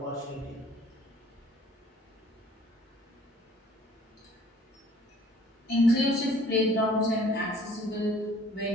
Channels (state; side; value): normal; both; correlation 0.55